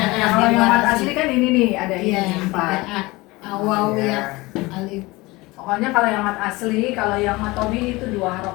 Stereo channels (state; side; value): quieter; right; 22.0 dB